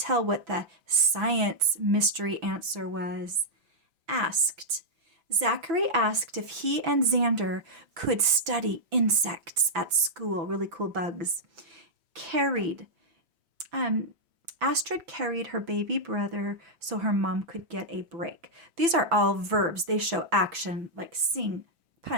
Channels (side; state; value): left; late; 6.0 ms